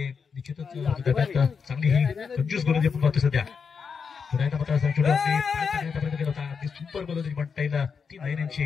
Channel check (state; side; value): quieter; right; 5.9 dB